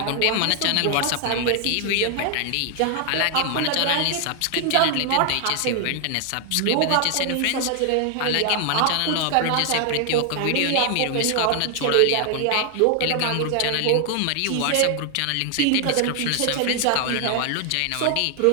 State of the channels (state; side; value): different; both; correlation 0.00